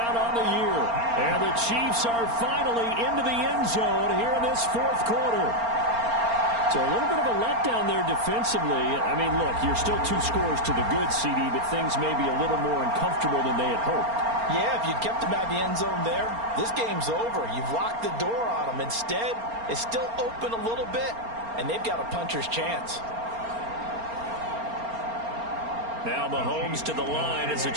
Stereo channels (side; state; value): left; late; 4.3 ms